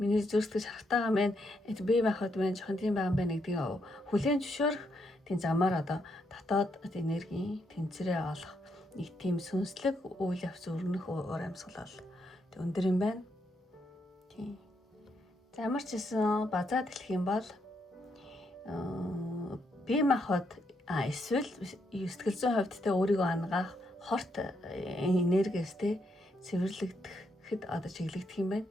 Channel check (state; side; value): normal; both; correlation 0.78